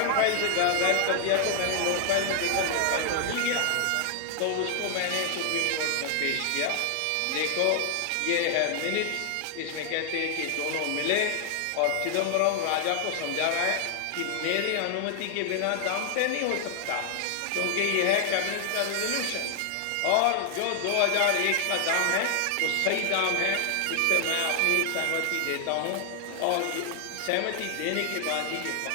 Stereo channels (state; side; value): different; both; correlation 0.00